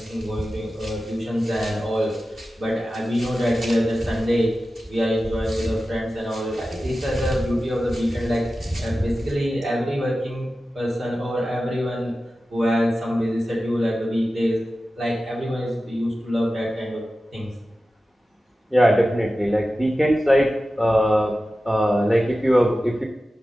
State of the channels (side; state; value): both; normal; correlation 0.94